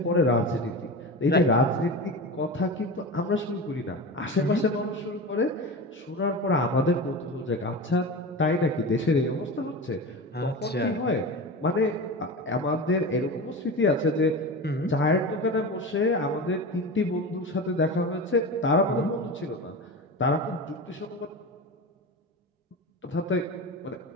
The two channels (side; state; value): both; normal; correlation 0.27